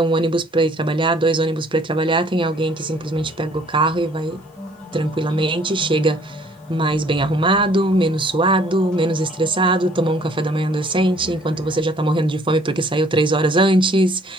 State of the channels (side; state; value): both; normal; correlation 0.59